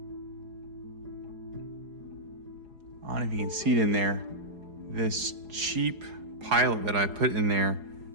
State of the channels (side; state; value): left; late; 4.8 ms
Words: I don't know if you can see it in there. This cheap pilot that I put in there,